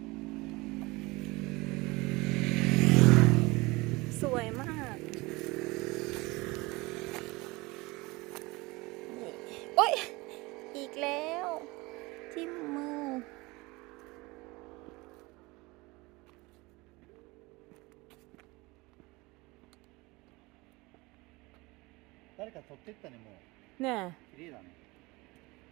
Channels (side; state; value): left; quieter; 23.4 dB